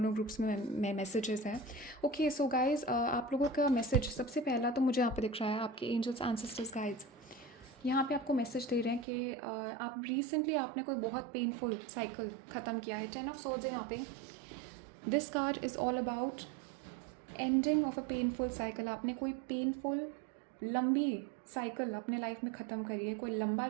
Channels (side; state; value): left; drops out; at 9.1 s